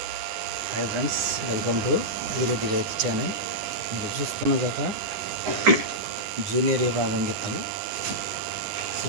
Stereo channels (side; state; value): left; late; 9.7 ms